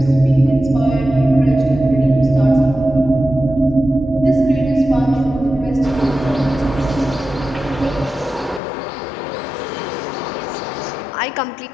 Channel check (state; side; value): drops out; right; at 8.6 s